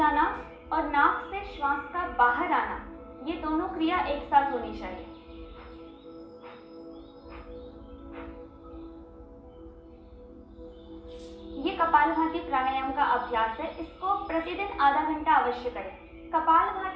और नाक से श्वास का बाहर आना, ये दोनों क्रिया एक साथ होनी चाहिए। ये कपालभाति प्राणायाम का अभ्यास है। इसको प्रतिदिन आधा घंटा अवश्य करें।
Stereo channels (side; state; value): both; identical; correlation 1.00